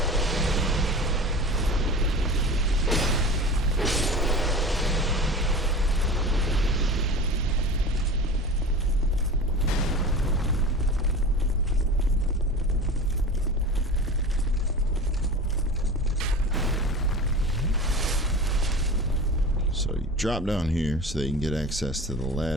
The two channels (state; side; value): normal; both; correlation 0.33